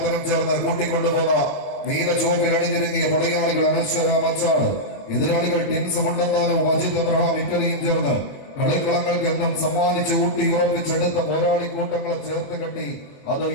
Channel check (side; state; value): right; late; 21 ms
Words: ചേർന്ന് കൂട്ടിക്കൊണ്ടുപോകുന്ന നീല ചുവപ്പിൽ അണിഞ്ഞിരുങ്ങിയ പടയാളികൾ അനശ്വര മച്ചാണ്. എതിരാളികൾ ടിൻസ് മുണ്ടന്താനും അജിത് അബ്രഹാം ഇറ്റലിയും ചേർന്ന് കളിക്കളങ്ങൾക്ക് എന്നും സമ്മാനിച്ച് ഊട്ടി ഉറപ്പിച്ചെടുത്ത പോരാളി കൂട്ടങ്ങളെ ചേർത്ത് കെട്ടി അത്